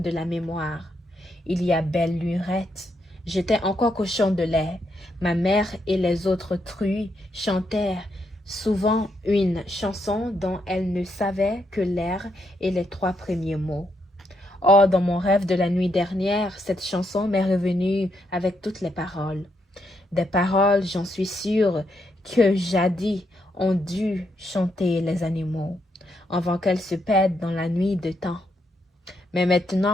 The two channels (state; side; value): normal; both; correlation 0.78